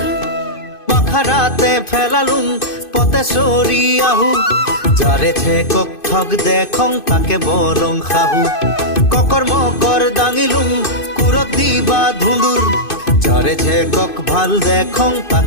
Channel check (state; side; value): late; right; 2.5 ms